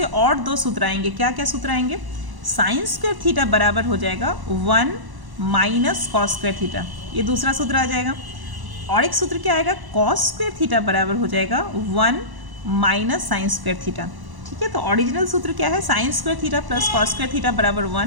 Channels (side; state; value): left; late; 1.0 ms